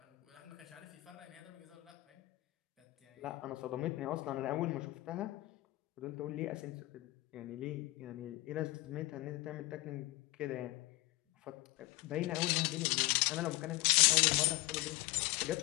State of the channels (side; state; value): right; quieter; 20.3 dB